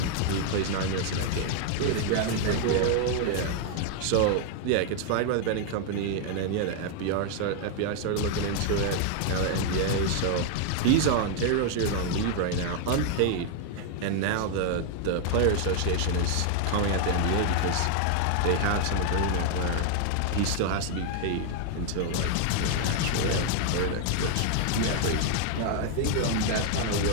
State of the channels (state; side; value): different; both; correlation 0.00